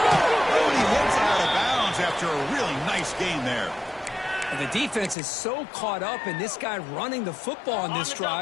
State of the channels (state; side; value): drops out; right; at 5.2 s